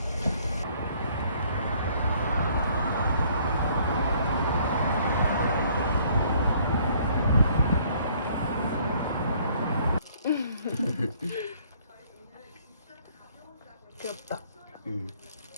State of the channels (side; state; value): both; inverted; correlation -0.61